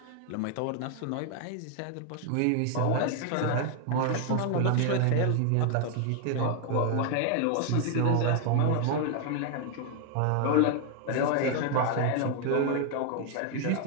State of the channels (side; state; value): both; different; correlation 0.00